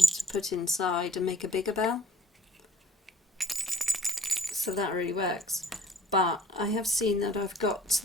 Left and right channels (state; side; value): normal; both; correlation 0.55